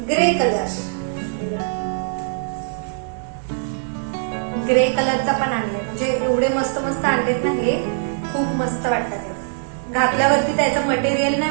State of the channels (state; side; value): silent; left; 55 dB below the other